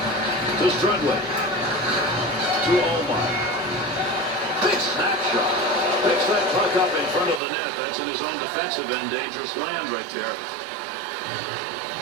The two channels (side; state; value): left; drops out; at 7.4 s